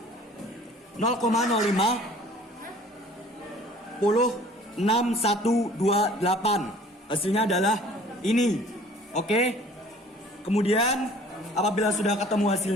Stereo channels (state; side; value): normal; both; correlation 0.51